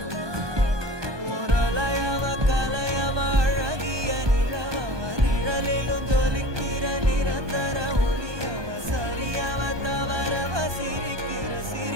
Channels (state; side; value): late; left; 1.2 ms